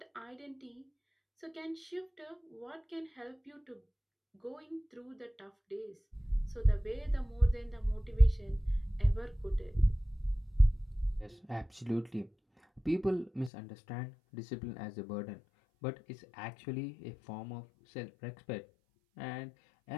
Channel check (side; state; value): right; drops out; at 13.5 s